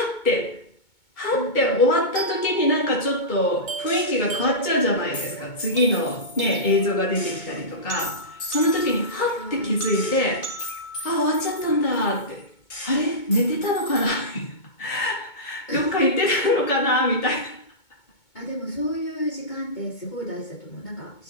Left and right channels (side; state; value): right; late; 2.2 ms